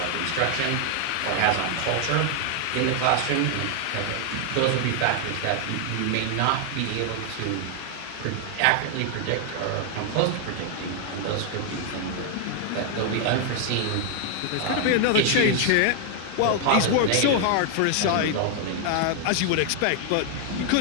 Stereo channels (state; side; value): different; both; correlation 0.00